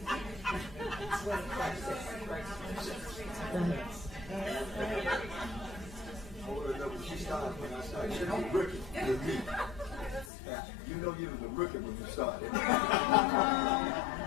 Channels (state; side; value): drops out; right; at 10.3 s